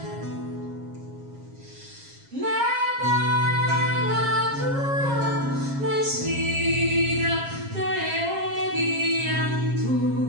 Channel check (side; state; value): left; late; 7.4 ms